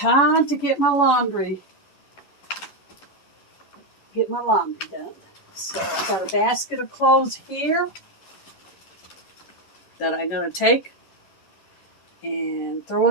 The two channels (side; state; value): right; late; 11 ms